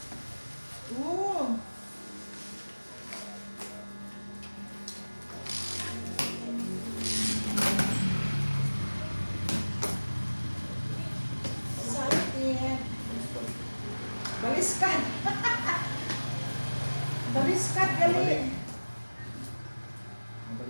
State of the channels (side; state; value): both; inverted; correlation -1.00